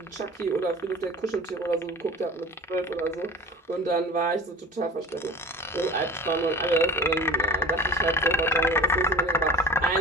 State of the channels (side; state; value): both; normal; correlation 0.39